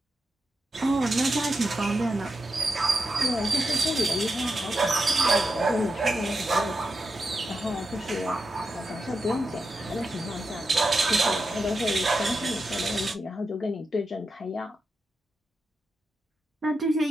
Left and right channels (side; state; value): both; normal; correlation 0.88